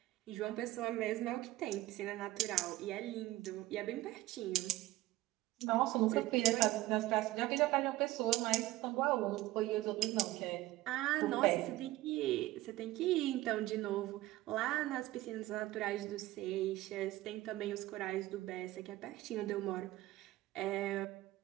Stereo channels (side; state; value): left; quieter; 16.7 dB